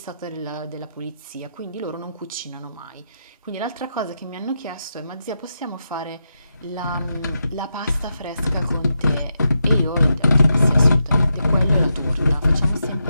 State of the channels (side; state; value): both; inverted; correlation -0.86